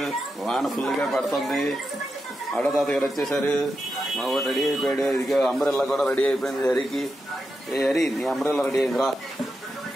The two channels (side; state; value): both; normal; correlation 0.87